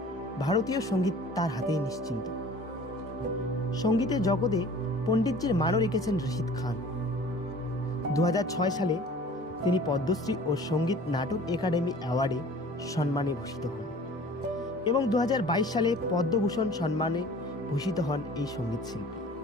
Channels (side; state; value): both; normal; correlation 0.46